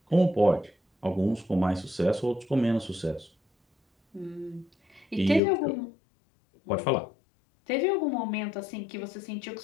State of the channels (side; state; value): right; drops out; at 5.4 s